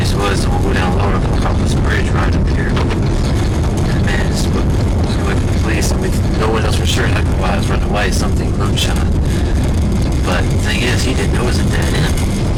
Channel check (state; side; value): identical; both; correlation 1.00